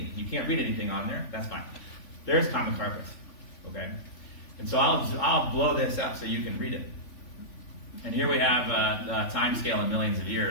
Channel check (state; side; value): late; right; 3.5 ms